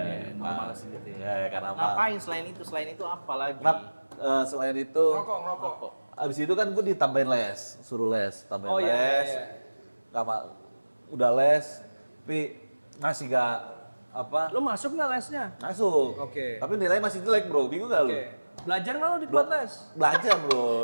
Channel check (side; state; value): both; inverted; correlation -1.00